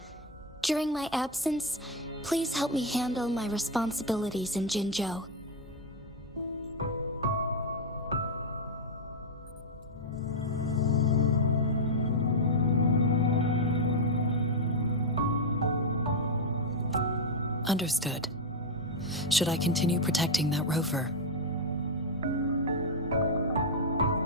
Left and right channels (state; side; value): normal; both; correlation 0.02